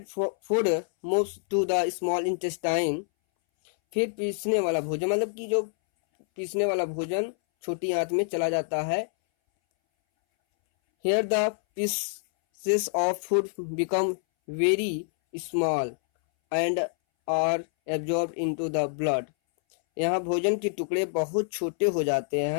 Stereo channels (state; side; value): silent; right; 60 dB below the other